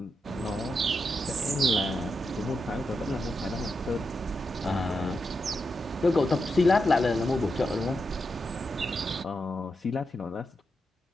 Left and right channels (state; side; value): normal; both; correlation 0.86